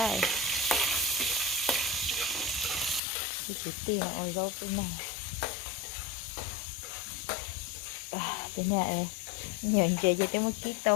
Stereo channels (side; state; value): right; drops out; at 3.0 s